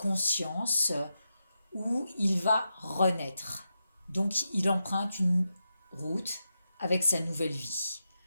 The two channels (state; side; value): inverted; both; correlation -0.87